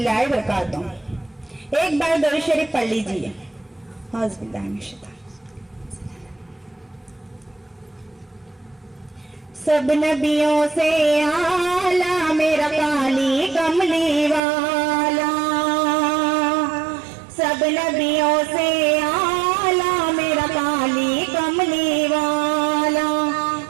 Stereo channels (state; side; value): drops out; left; at 14.4 s